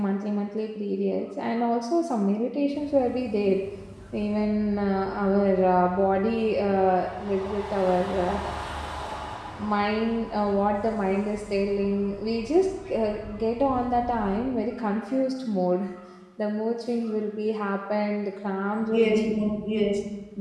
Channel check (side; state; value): both; identical; correlation 1.00